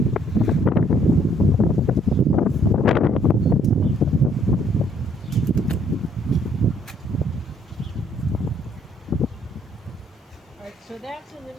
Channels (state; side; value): normal; both; correlation 0.65